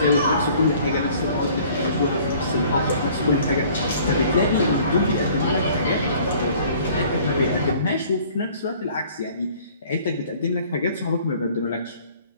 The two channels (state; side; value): inverted; both; correlation -0.54